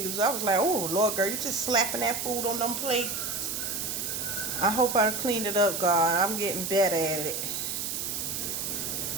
I was like, oh, Lord, girl, you just slapping that food on them plates. I hope I cleaned it up, God. I'm getting better at it.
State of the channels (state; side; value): noise; right; hiss, 3 dB below the sound